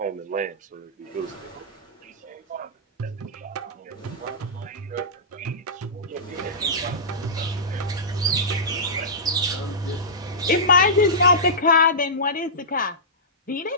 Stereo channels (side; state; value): both; normal; correlation -0.15